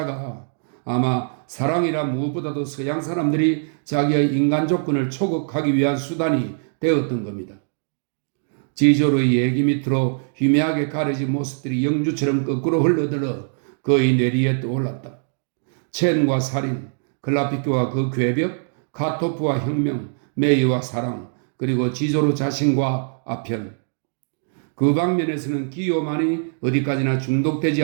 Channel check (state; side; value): silent; left; digital silence